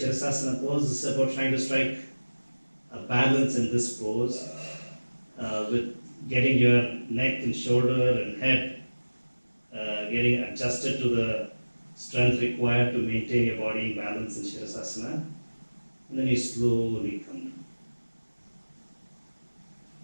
pose, this is about trying to strike a balance in this pose with getting your neck and shoulder and head getting adjusted to the strength required to maintain your body in balance in Shirasasana. And then you slowly come down.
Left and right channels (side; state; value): both; inverted; correlation -1.00